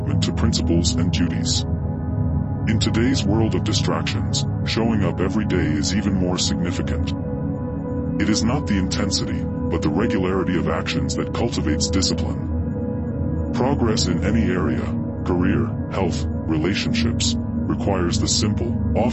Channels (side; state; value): right; noise; rumble, 22 dB below the sound